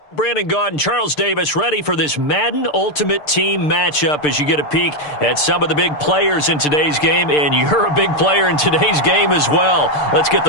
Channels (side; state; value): right; late; 6.7 ms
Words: Brandon Gaud and Charles Davis ready for this Madden Ultimate Team matchup as you get a peek at some of the big players in today's game, and you're a big player in today's game as well. Let's get the